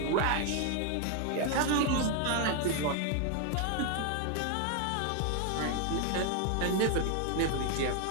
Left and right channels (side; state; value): both; different; correlation 0.00